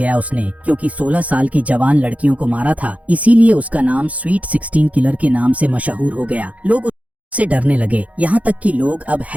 उसने, क्योंकि 16 साल की जवान लड़कियों को मारा था, इसीलिए उसका नाम स्वीट 16 किलर के नाम से मशहूर हो गया। लोग से डरने लगे, यहाँ तक कि लोग अब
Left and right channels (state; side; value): late; left; 0.068 ms